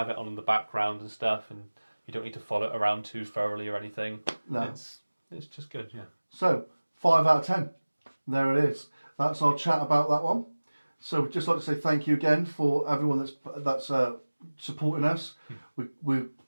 it on in the background and stuff, and you don't need to follow it around too thoroughly or anything. No. It's just good, yeah. So 5 out of 10. There it is. That's our chat about that one. So we'd just like to say thank you again for everyone that's supporting us.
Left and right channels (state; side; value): inverted; both; correlation -1.00